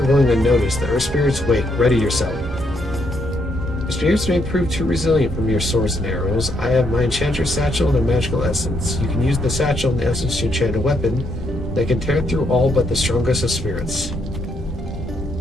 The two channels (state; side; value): normal; both; correlation 0.75